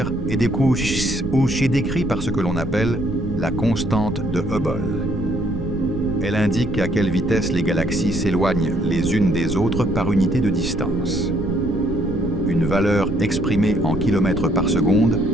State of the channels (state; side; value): noise; right; rumble, 8 dB below the sound